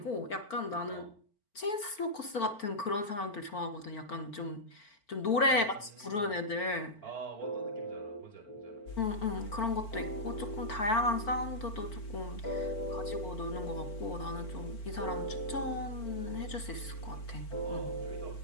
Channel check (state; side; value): late; right; 4.5 ms